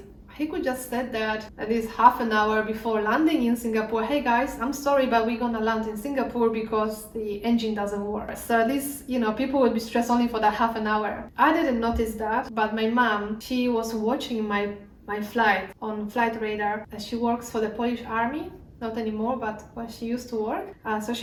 He could just said that at least half an hour before landing in Singapore, hey guys, I'm sorry, but we're gonna land in Singapore because the engine doesn't work. So at least, people would be stressed only for that half an hour. I didn't notice that, but my mom, she was watching my flight on Flight Radar. She works for the Polish Army. Not anymore, but when she used to work. So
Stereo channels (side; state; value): both; identical; correlation 1.00